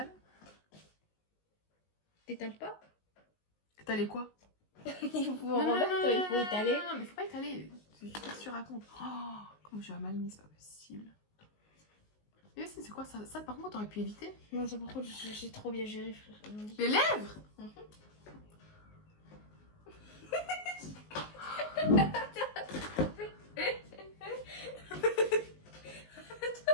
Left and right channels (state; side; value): late; right; 19 ms